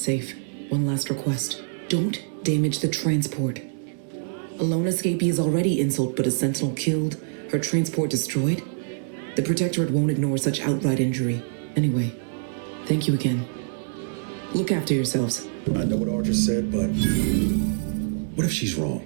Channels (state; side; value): silent; left; 62 dB below the other